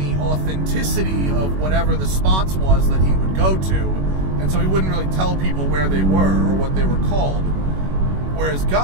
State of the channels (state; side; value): late; left; 21 ms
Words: authenticity of whatever the spots was that he would go to, and so he wouldn't really tell people where they were or what they were called. Whereas